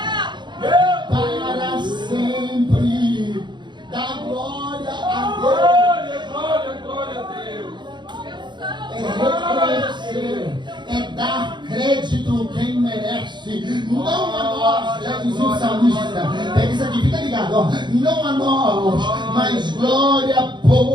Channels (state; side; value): late; left; 0.22 ms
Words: Para sempre. Dá glória a Deus. Glória a Deus. É reconhecer, é dar crédito quem merece, não a nós, já dizia o salmista. Pega isso aqui, fica ligado, ó. Não a nós, mas glória,